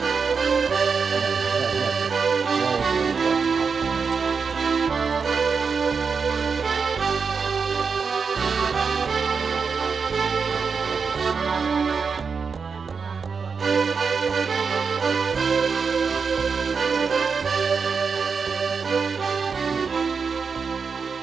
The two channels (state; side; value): quieter; left; 5.5 dB